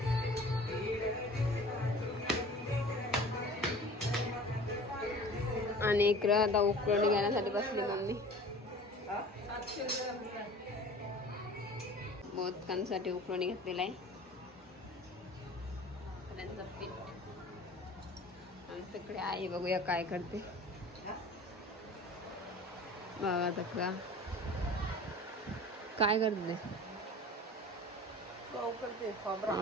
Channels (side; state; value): both; normal; correlation 0.42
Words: आणि इकडं आता उकळणी घेण्यासाठी बसली मम्मी. मोदकांसाठी उकळणी घेतलेला आहे. त्यांचं पीठ आमच्याकडे आई बघूया काय करते. बघा तक्रा काय करते.